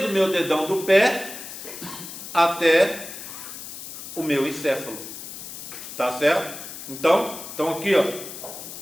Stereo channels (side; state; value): left; noise; hiss, 11 dB below the sound